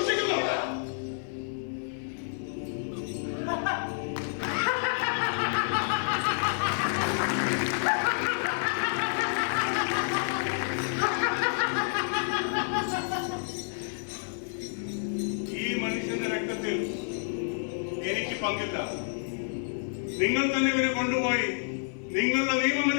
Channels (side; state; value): right; silent; 56 dB below the other